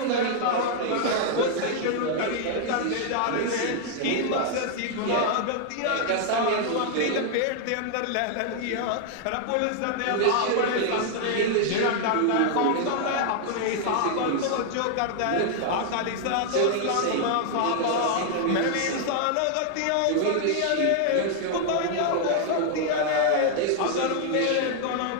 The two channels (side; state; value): both; different; correlation 0.00